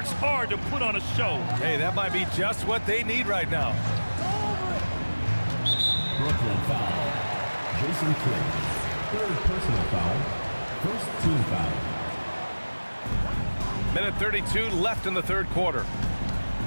hard to put on a show. Hey, that might be just what they need right now. Brooklyn foul. Jason Kidd. Third personal foul. First team foul. Minute 32 left in the third quarter.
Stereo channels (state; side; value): inverted; both; correlation -1.00